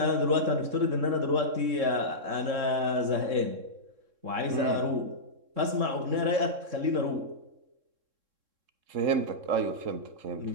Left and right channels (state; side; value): late; left; 3.7 ms